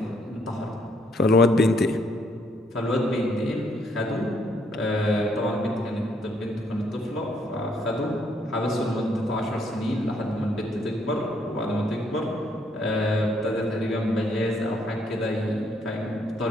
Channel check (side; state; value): both; normal; correlation 0.70